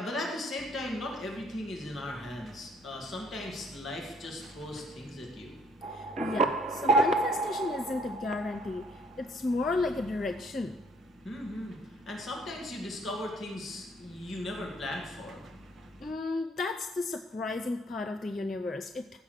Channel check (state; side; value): normal; both; correlation 0.63